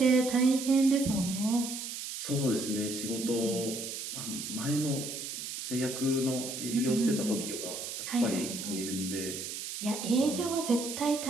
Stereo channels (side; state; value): right; noise; hiss, 6 dB below the sound